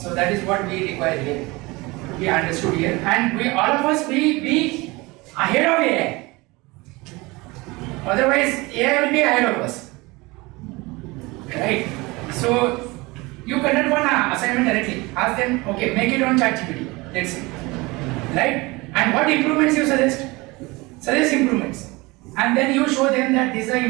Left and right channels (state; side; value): quieter; left; 23.4 dB